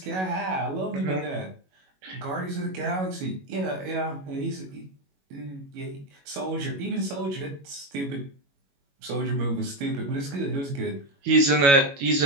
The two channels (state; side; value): late; left; 21 ms